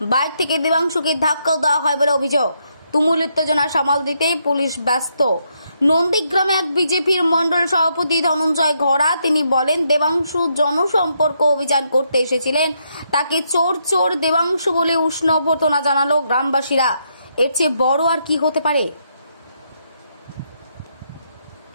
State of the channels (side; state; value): both; inverted; correlation -0.77